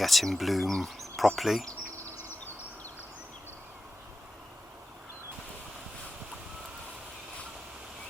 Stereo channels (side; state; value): both; normal; correlation 0.93